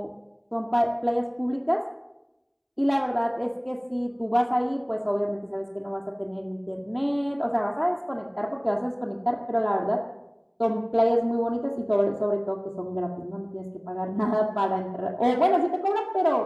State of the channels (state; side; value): identical; both; correlation 1.00